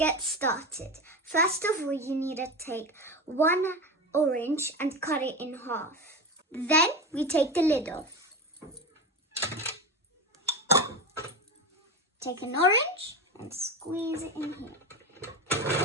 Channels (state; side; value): normal; both; correlation 0.23